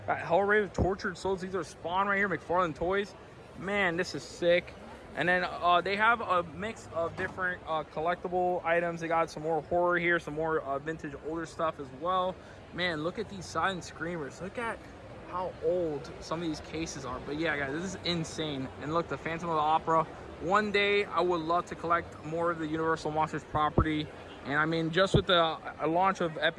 Got Hellraiser, Tortured Souls. These are Spawn right here, McFarlane Toys. Man, this is sick. And then they have a mix of different collectible items. They got some more horror here, some more vintage older stuff as well. Man, look at these silent screamers. Look at how old some of these cases are. But yeah, guys, this is insane. And look, the Phantom of the Opera. One day, I would love to collect more of the Universal Monsters property. And I mean, just with the launch of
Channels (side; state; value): both; identical; correlation 1.00